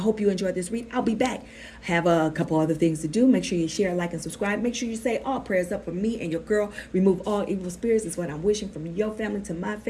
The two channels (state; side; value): identical; both; correlation 1.00